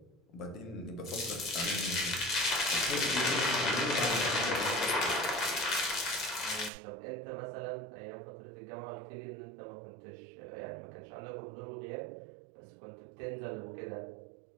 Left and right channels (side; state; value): left; drops out; at 6.7 s